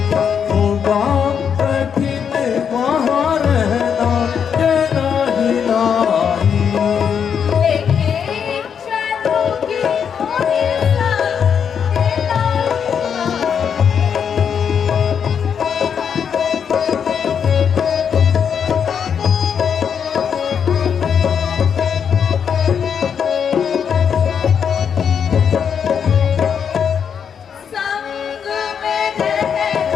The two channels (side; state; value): right; quieter; 7.4 dB